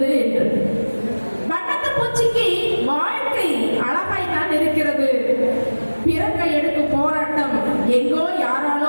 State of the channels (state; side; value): inverted; both; correlation -1.00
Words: என்று. வண்ணத்து பூச்சிக்கு வாழ்க்கை அழகாய் தான் இருக்கிறது. பிறக்க எடுக்கும் போராட்டம் எங்கோ